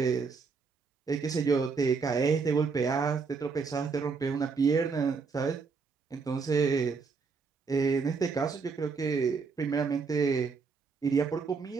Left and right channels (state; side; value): quieter; left; 5.0 dB